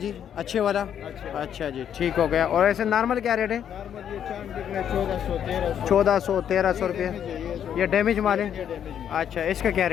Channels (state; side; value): quieter; right; 9.2 dB